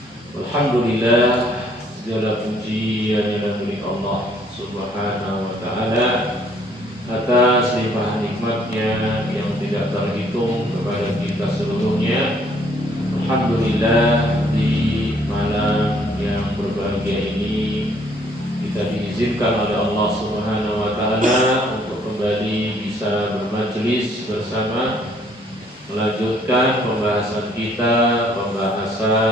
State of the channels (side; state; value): both; normal; correlation 0.63